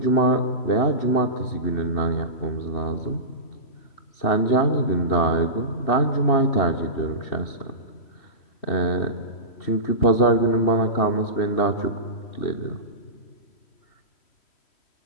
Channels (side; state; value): right; late; 2.7 ms